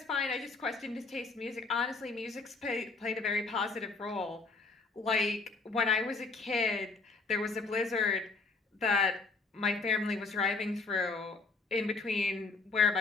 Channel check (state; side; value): quieter; right; 4.0 dB